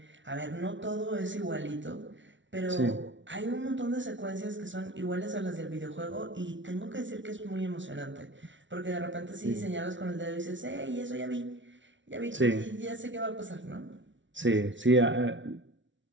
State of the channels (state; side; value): late; left; 0.55 ms